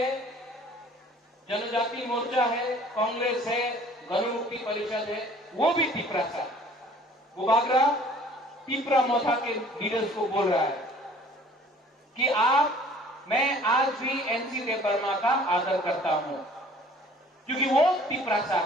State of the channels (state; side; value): normal; both; correlation 0.52